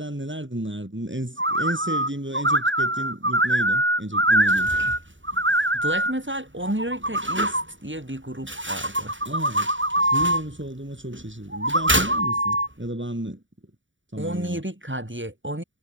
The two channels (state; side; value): late; left; 0.55 ms